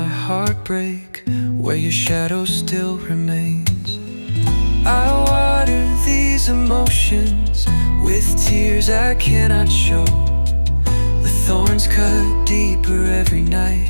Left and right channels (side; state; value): both; inverted; correlation -1.00